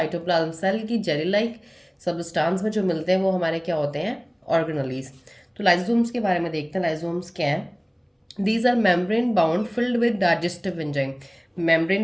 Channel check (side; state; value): both; identical; correlation 1.00